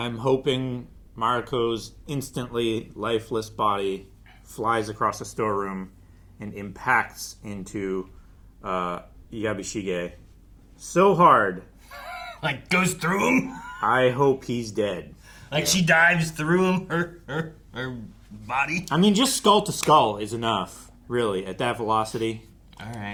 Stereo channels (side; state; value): both; identical; correlation 1.00